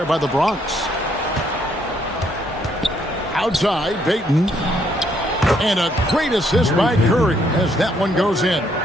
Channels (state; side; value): normal; both; correlation 0.70